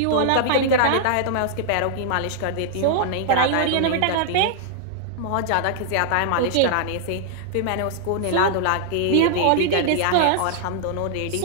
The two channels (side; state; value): both; different; correlation -0.01